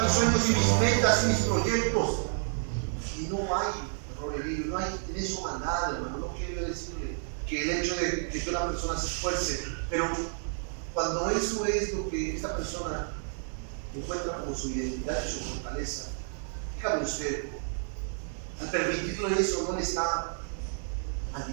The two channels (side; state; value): left; silent; digital silence